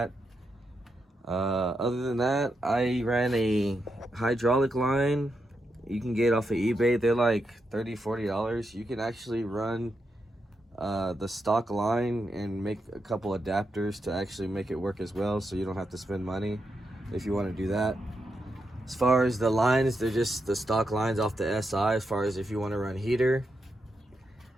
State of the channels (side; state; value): both; normal; correlation 0.84